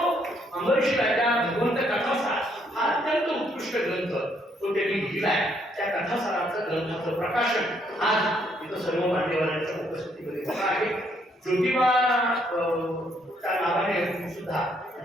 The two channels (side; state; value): both; normal; correlation 0.70